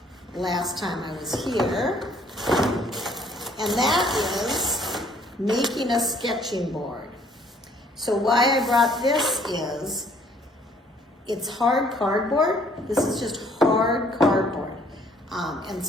last time I was here, and that is making a sketching board. So why I brought this is, it's hard cardboard. This is just hard cardboard. And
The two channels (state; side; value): normal; both; correlation 0.61